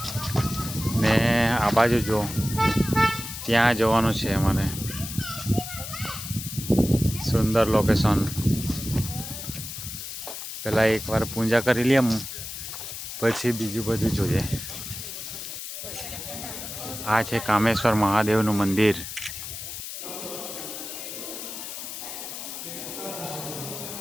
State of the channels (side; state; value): left; noise; hiss, 8 dB below the sound